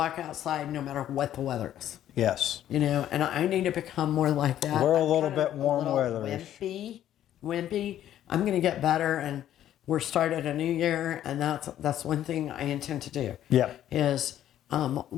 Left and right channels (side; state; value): right; quieter; 11.6 dB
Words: outside no matter what the weather is. Yes. And I need to become more like that. We're a I'm little kind of bit warm a little weatherish. Wimpy. I'm going to get better, and we're started a new year, and that's one thing I intend to do. Yeah. Is